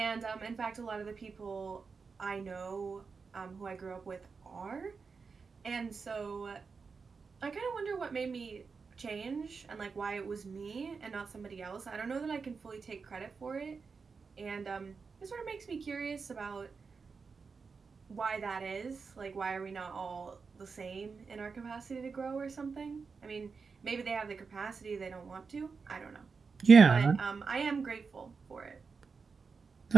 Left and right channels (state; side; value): quieter; left; 5.1 dB